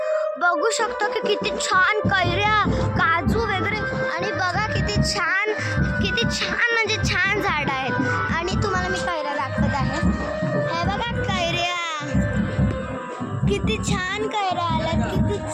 बघू शकतो की किती छान कैऱ्या, काजू वगैरे, आणि बघा किती छान म्हणजे छान झाडं आहेत. आणि तुम्हाला मी कैऱ्या दाखवत आहे. हे बघा कैऱ्या, किती छान कैऱ्या आल्यात, किती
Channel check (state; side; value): identical; both; correlation 1.00